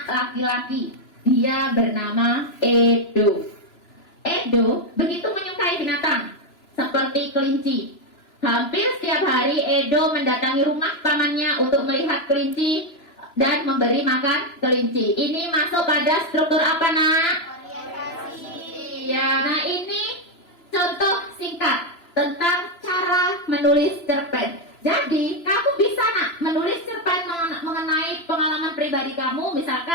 laki-laki. Dia bernama Edo. Edo begitu menyukai binatang seperti kelinci. Hampir setiap hari Edo mendatangi rumah pamannya untuk melihat kelinci dan memberi makan kelinci. Ini masuk pada struktur apa nak? Iya. Nah, ini contoh singkat tentang cara menulis cerpen. Jadi, kamu bisa nak menulis cerpen mengenai pengalaman pribadi kamu.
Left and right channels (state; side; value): late; right; 2.9 ms